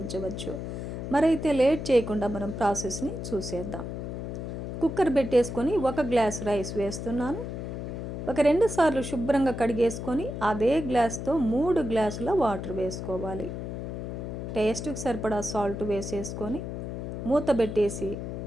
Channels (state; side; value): noise; left; hum, 6 dB below the sound